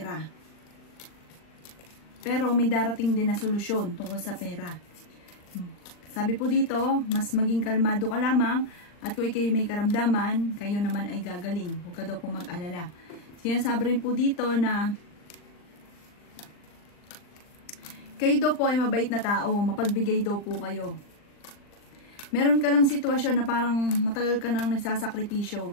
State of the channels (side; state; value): right; late; 39 ms